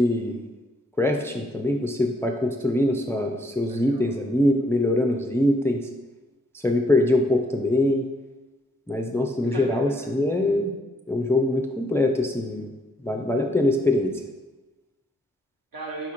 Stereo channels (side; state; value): both; normal; correlation 0.71